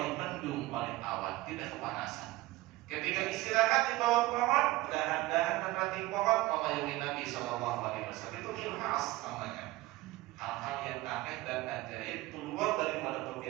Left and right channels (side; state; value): left; quieter; 18.7 dB